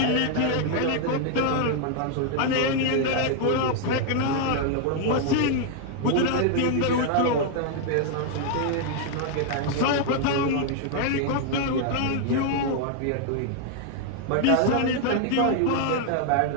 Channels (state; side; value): different; both; correlation 0.00